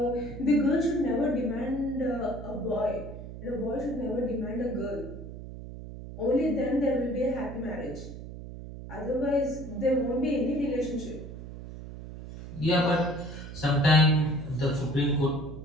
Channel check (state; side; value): noise; right; hum, 11 dB below the sound